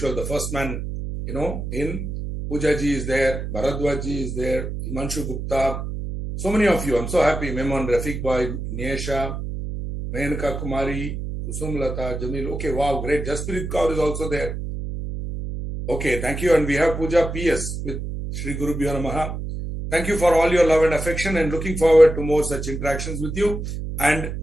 the first man, in. Poojaji is there, Bharadwaji is there, Himanshu Gupta, so many of you. I'm so happy. Memon, Rafiq Bhai, Niesha, Mehanka Kumari, Kusum Lata, Jamil. Okay, wow, great. Jaspirit Kaur is also there. Okay, thank you. And we have Puja PS with Shri Guru Bhyo Namaha. Thank you for all your love and affection and looking forward to more such interactions with you. And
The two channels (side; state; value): right; noise; hum, 5 dB below the sound